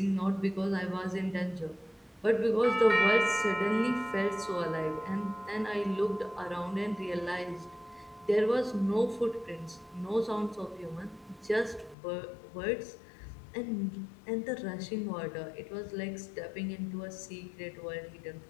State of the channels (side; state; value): right; drops out; at 12.0 s